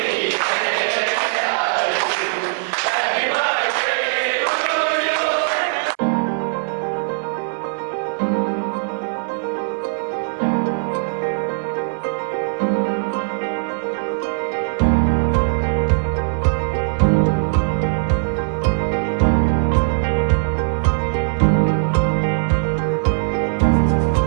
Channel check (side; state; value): left; silent; 66 dB below the other